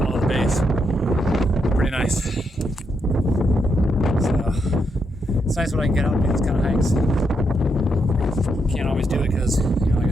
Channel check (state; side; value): normal; both; correlation 0.81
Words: the base. Pretty nice. So it's nice when I can get out and do these kind of hikes. Can't always do it because, like I